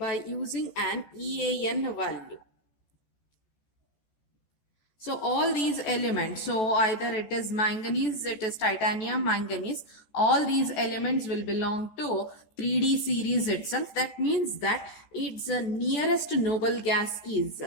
using an EAN value. So all these elements, so either it is manganese, it is titanium, manganese, all these elements will belong to 3D series itself. That means that its nearest noble gas is,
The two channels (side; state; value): right; late; 14 ms